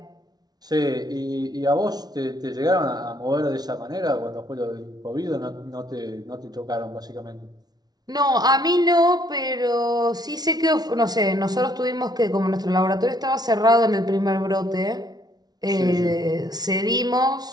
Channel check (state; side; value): late; left; 0.19 ms